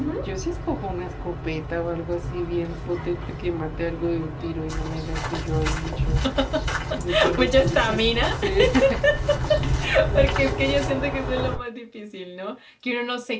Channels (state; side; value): identical; both; correlation 1.00